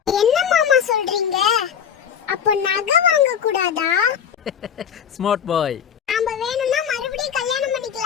என்ன மாமா சொல்றீங்க? அப்ப நகை வாங்க கூடாதா? Smart boy. நாம வேணும்னா மறுபடியும் கல்யாணம்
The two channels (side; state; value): right; quieter; 8.0 dB